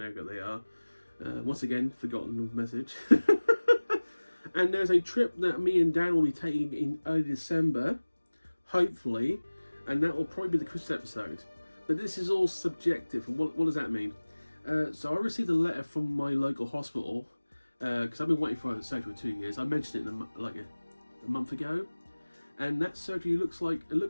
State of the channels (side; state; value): both; inverted; correlation -1.00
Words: who they are. Once again, forgotten the message. And there's a trip that me and Dan will be taking in early December, hopefully, and that will probably be the Christmas episode. But this is all subjective, and what does that mean? So I received a letter from my local hospital, because I've been waiting for a surgery for 2 years. I mentioned it like a month ago, and that surgery looks like a